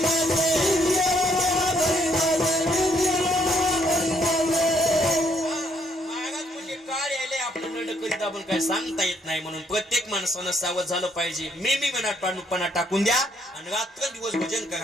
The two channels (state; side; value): normal; both; correlation 0.70